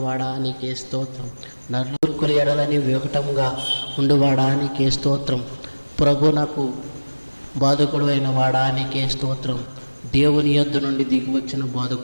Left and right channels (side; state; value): both; inverted; correlation -1.00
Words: నీకే స్తోత్రం. నలుగురు ఎడలని వికటముగా ఉండువాడా నీకే స్తోత్రం. ప్రభు నాకు బాధకుడు అయిన వాడా నీకే స్తోత్రం. దేవుని యొద్ద నుండి దిగివచ్చిన